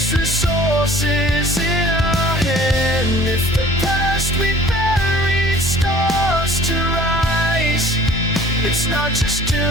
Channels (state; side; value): normal; both; correlation 0.50